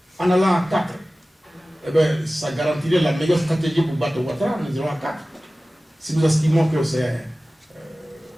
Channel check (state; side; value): normal; both; correlation 0.97